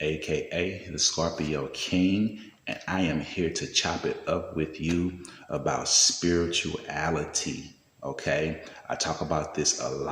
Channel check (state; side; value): identical; both; correlation 1.00